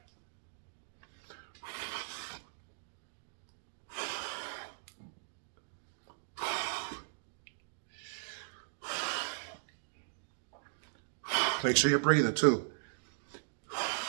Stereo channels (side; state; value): left; silent; digital silence